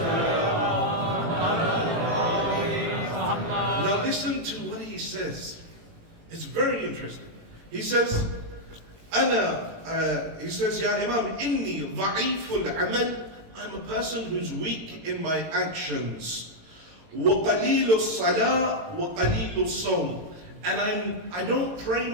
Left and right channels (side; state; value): left; late; 18 ms